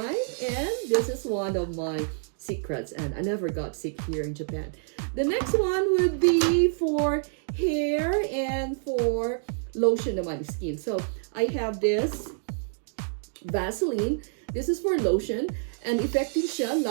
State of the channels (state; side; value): silent; left; digital silence